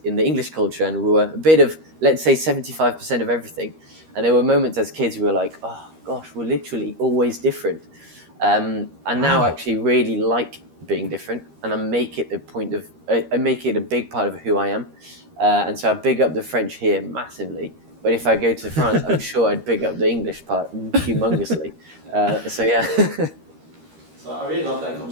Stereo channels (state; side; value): late; left; 13 ms